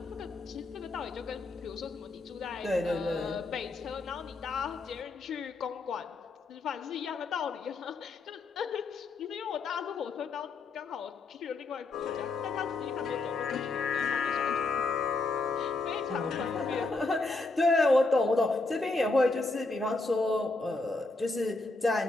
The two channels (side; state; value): right; quieter; 3.4 dB